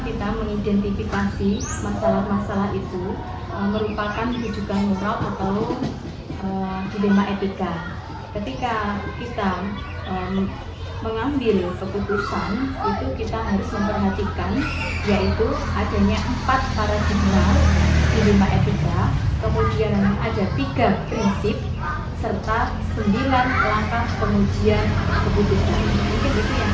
kita mengidentifikasi masalah-masalah itu merupakan rujukan moral atau dilema etika. Ketika kita mengambil keputusan itu kita harus memperhatikan yaitu adanya 4 paradigma dilema etika, kemudian ada 3 prinsip serta 9 langkah pengujian keputusan. Mungkin itu yang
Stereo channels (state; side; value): identical; both; correlation 1.00